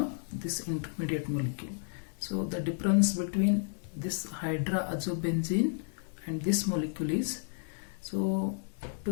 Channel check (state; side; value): silent; right; digital silence